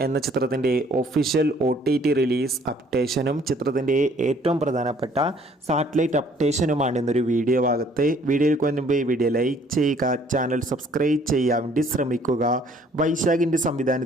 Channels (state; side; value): normal; both; correlation 0.60